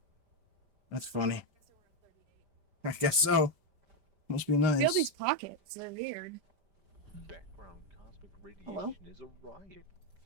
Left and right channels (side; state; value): left; late; 5.1 ms